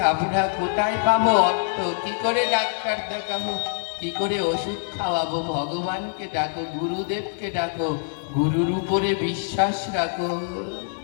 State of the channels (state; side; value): silent; right; digital silence